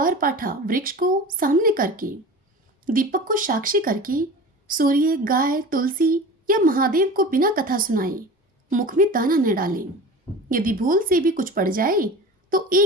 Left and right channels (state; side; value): normal; both; correlation 0.35